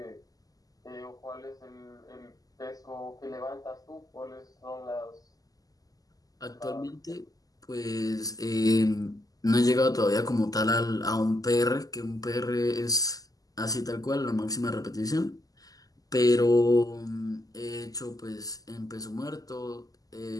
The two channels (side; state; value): right; late; 0.17 ms